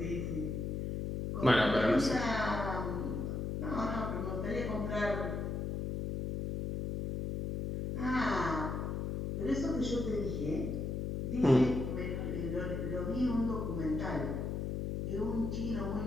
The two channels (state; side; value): noise; left; hum, 2 dB below the sound